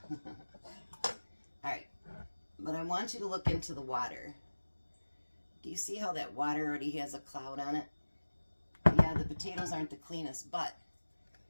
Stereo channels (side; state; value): both; inverted; correlation -1.00